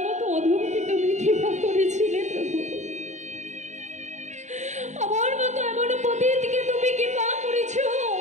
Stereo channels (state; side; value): late; left; 0.34 ms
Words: মতো অধমকে তুমি কৃপা করেছিলে প্রভু। আমার মতো এমন পতিতকে তুমি কৃপা করেছ,